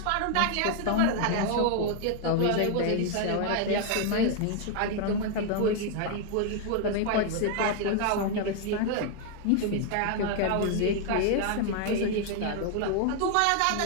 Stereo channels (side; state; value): both; different; correlation 0.00